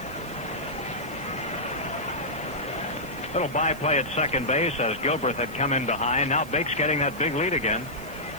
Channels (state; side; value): noise; left; hiss, 22 dB below the sound